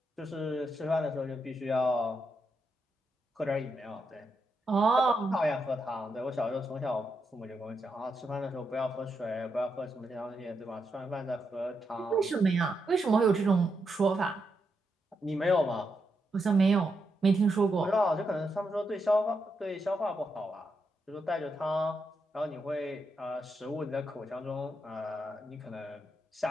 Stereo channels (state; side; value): normal; both; correlation 0.83